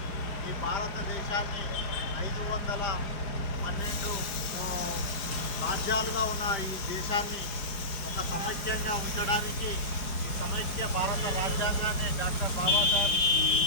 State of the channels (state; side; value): late; right; 5.2 ms